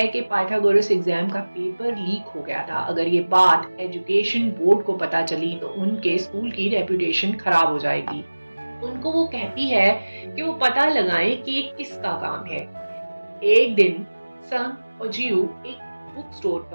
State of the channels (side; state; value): both; inverted; correlation -1.00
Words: कि पाइथागोरस एग्जाम का पेपर लीक हो गया था। अगर ये बात एजुकेशन बोर्ड को पता चली तो उनके स्कूल की रेपुटेशन खराब हो जाएगी। उनको वो कहती है कि वो पता लगाएं कि ये किसका काम है। एक दिन संग और जियू एक बुक स्टोर